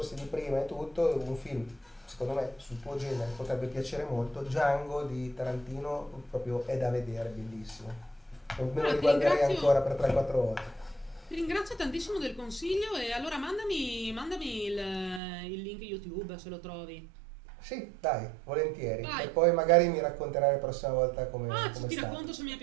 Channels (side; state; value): left; drops out; at 15.2 s